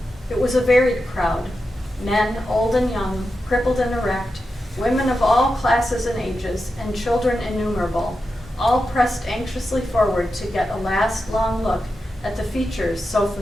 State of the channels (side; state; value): both; normal; correlation 0.89